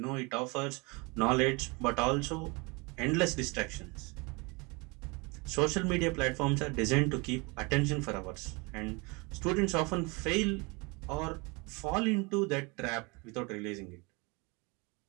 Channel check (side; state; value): left; quieter; 28.1 dB